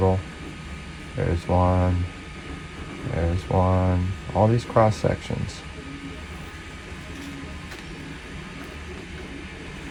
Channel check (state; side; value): identical; both; correlation 1.00